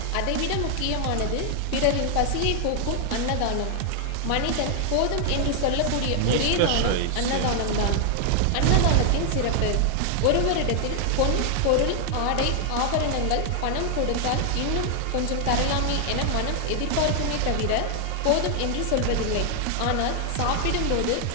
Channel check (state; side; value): different; both; correlation 0.00